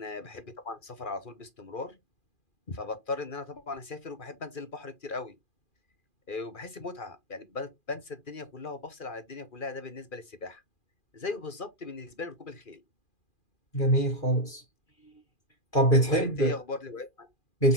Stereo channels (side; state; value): right; late; 2.4 ms